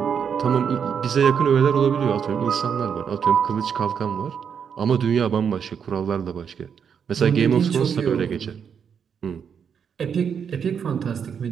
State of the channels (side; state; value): left; quieter; 7.2 dB